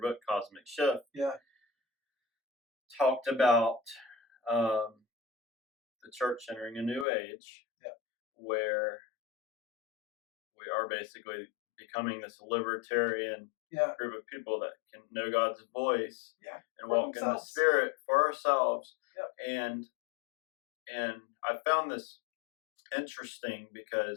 Cosmic Shift, Yeah. talked about um, the church entering a new age, Yeah. where we are basically becoming this libertarian Yeah. group of people that can know God's voice Yeah. and For walk in the themselves. Spirit for ourselves. Yep. And I found this interesting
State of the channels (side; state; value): right; drops out; at 7.1 s